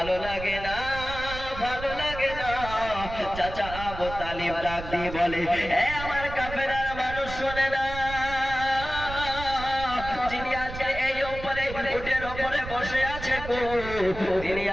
লাগে না, ভালো লাগে না। চাচা আবু তালিব ডাক দিয়ে বলে, এ আমার কাফেরার মানুষ শোনে না, যিনি আজকে এই উপরে উটের উপরে বসে আছে তিনি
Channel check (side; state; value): right; noise; rumble, 10 dB below the sound